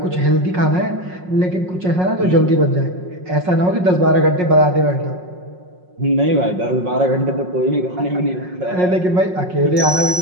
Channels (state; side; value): late; left; 5.5 ms